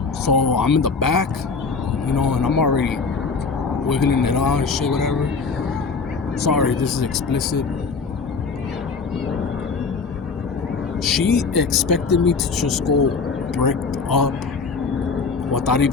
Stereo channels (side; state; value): right; quieter; 4.8 dB